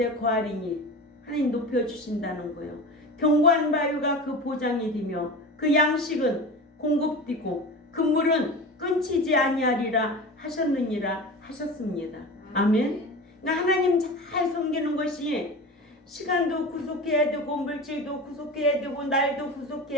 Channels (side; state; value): both; normal; correlation 0.31